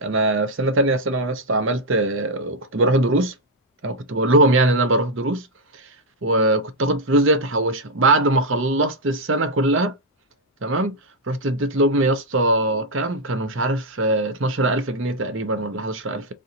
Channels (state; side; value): normal; both; correlation 0.00